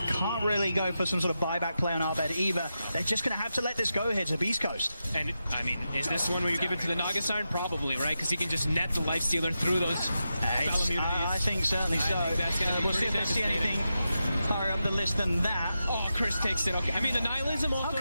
really go for some sort of buyback play on our bed either. They're just going to have to let this go here to Beast Coast. And, I mean, is this one where you give it to the Naga Siren? Probably, right? Because he can just net the Lifestealer through those I think certainly so. We'll see if they see anything higher up the list than that. Oh, Chris takes it. Okay. I mean, the Nihilism off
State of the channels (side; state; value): both; inverted; correlation -0.89